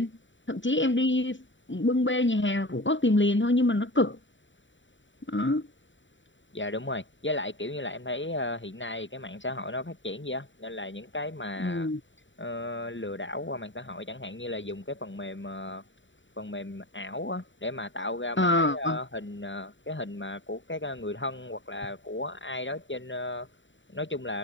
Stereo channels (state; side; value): late; right; 0.55 ms